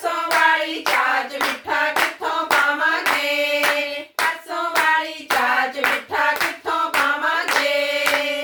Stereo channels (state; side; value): identical; both; correlation 1.00